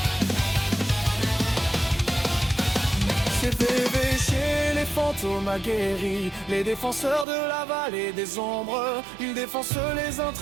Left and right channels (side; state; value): left; drops out; at 7.2 s